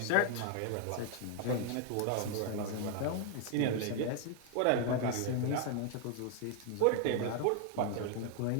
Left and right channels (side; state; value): both; different; correlation 0.00